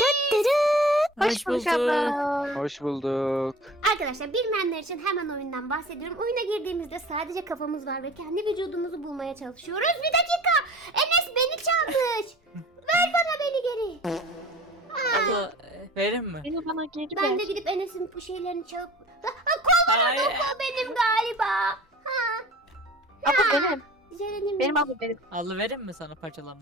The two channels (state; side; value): normal; both; correlation 0.42